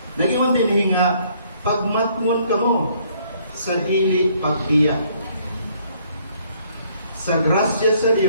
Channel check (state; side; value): inverted; both; correlation -0.65